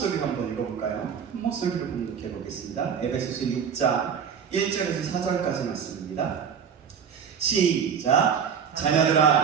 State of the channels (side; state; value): left; quieter; 7.3 dB